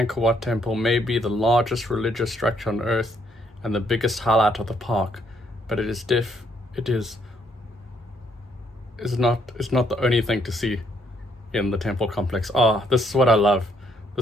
Wat temple, may be the largest religious structure on earth and the biggest highlight of the park, but it is not the only thing to see in the temple complex. This is what I love.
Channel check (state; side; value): normal; both; correlation 0.71